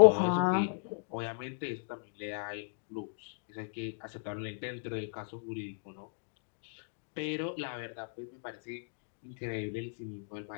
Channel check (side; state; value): right; silent; digital silence